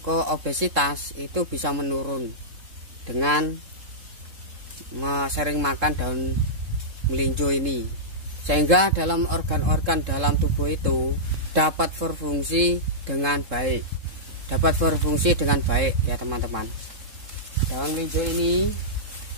obesitas itu bisa menurun dengan sering makan daun melinjo ini. Sehingga dalam organ-organ dalam tubuh itu dapat berfungsi dengan baik. Dapat berfungsi dengan baik ya teman-teman. Daun melinjo ini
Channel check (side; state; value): left; late; 3.7 ms